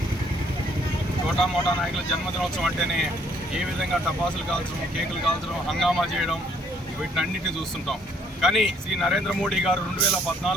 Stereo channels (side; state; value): both; normal; correlation 0.64